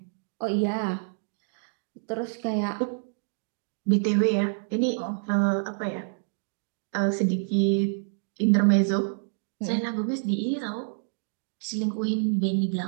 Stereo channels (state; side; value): silent; left; digital silence